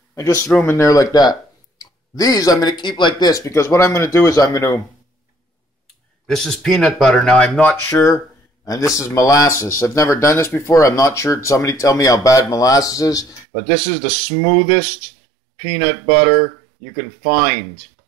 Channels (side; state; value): left; drops out; at 13.5 s